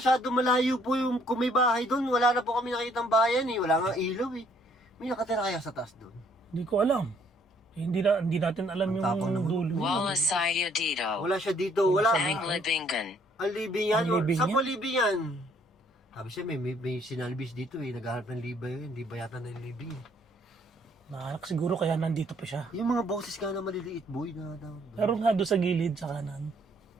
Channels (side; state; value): both; normal; correlation 0.64